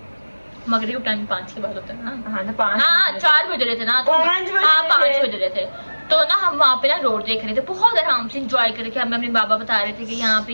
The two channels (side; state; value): both; inverted; correlation -1.00